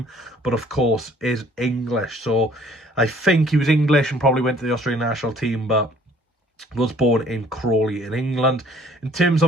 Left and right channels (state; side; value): normal; both; correlation 0.57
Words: but of course is English. So I think he was English and probably went to the Australian national team, but was born in Crawley in England. In terms